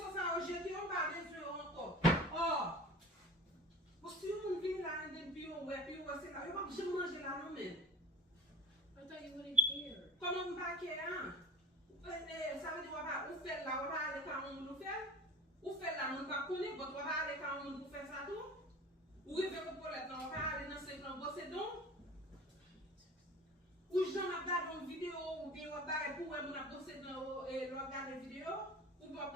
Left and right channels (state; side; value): normal; both; correlation 0.39